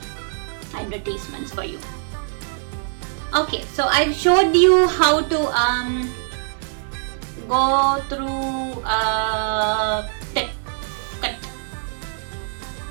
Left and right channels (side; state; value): left; silent; digital silence